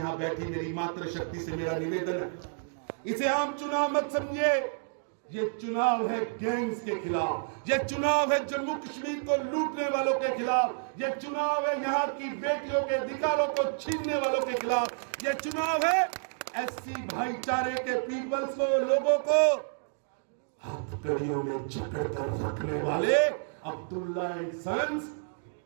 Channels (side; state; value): left; silent; digital silence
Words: बैठी मेरी मातृशक्ति से मेरा निवेदन है, इसे आम चुनाव मत समझिए। ये चुनाव है गैंग्स के खिलाफ, ये चुनाव है जम्मू कश्मीर को लूटने वालों के खिलाफ, ये चुनाव है यहां की बेटियों के अधिकारों को छीनने वालों के खिलाफ, ये चुनाव है एससी भाईचारे के पीपल्स को, लोगों को हथकड़ियों में जकड़ कर रखने वाले अब्दुल्ला एंड सन्स